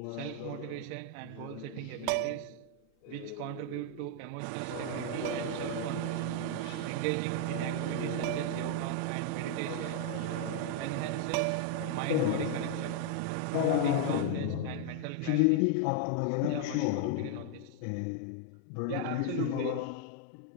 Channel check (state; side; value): different; both; correlation 0.00